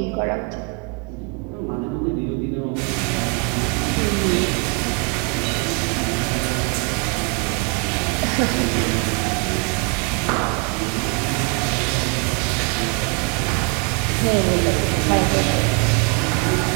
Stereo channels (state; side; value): quieter; left; 32.1 dB